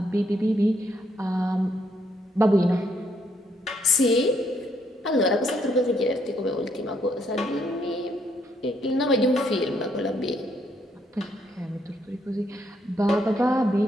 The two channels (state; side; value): normal; both; correlation 0.72